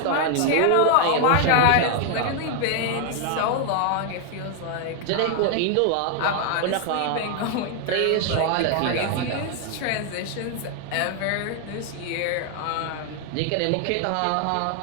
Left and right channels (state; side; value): different; both; correlation 0.00